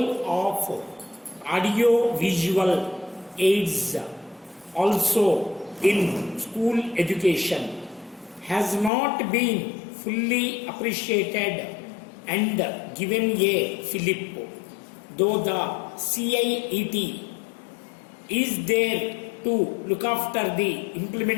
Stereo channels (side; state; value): right; drops out; at 8.9 s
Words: of audio-visual aids also in school education has not been fully appreciated and given a fillip, though the CIET is there to look after the